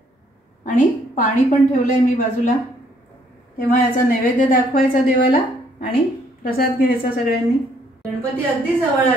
आणि पाणी पण ठेवलंय मी बाजूला। तेव्हा याचा नैवेद्य दाखवायचा देवाला आणि प्रसाद घ्यायचा सगळ्यांनी। गणपती अगदी जवळ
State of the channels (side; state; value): both; normal; correlation 0.66